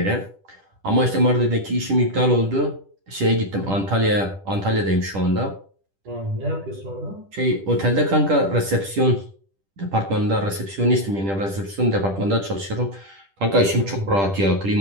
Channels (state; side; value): late; left; 10 ms